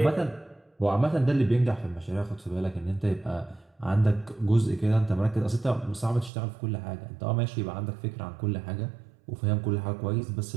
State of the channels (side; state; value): left; drops out; at 6.3 s